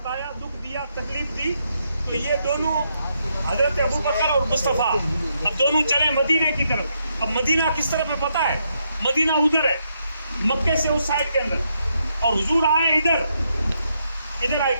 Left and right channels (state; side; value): inverted; both; correlation -0.79